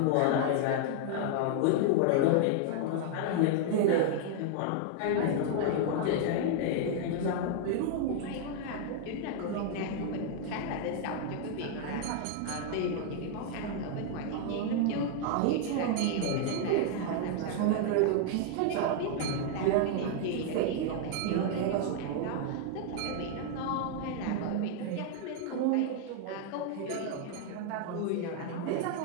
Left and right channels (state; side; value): different; both; correlation 0.00